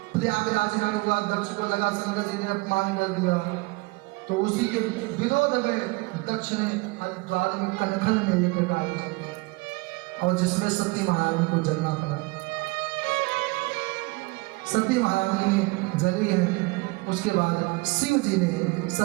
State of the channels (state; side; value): quieter; left; 25.6 dB